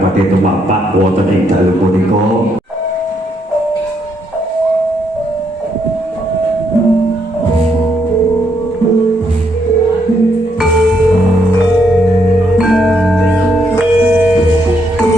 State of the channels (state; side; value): normal; both; correlation 0.75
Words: badhe tumapak wonten ing dalu punika.